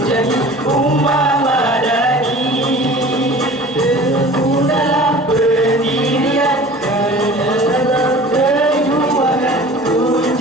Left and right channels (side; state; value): both; normal; correlation 0.43